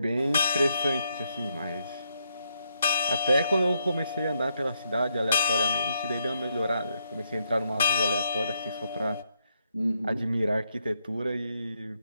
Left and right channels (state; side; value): inverted; both; correlation -0.78